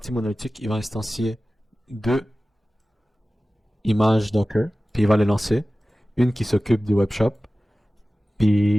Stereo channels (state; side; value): normal; both; correlation 0.96